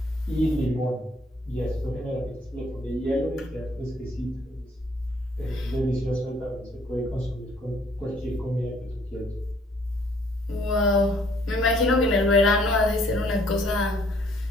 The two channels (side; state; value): both; normal; correlation 0.63